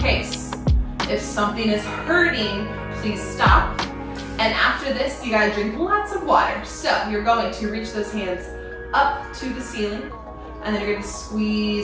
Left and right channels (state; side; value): identical; both; correlation 1.00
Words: If something is hurting, please stop. And after this, you gotta drink lots of water. So you're going to reach those hands up to the ceiling, and then you're going to